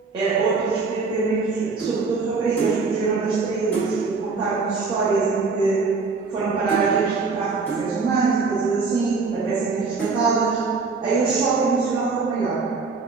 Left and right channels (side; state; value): left; quieter; 4.4 dB